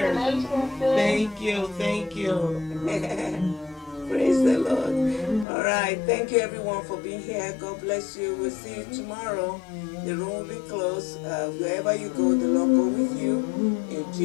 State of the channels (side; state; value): right; drops out; at 5.5 s